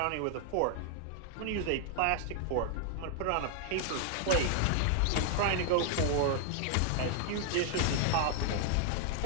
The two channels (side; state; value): both; different; correlation 0.00